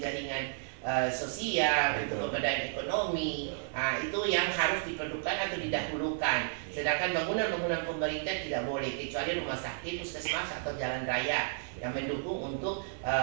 sosial, untuk pemberdayaan ekonomi, itu yang harus diperlukan atau didahulukan. Sedangkan bangunan-bangunan pemerintah tidak boleh kecuali rumah sakit, puskesmas atau jalan raya yang mendukung untuk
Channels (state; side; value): silent; left; digital silence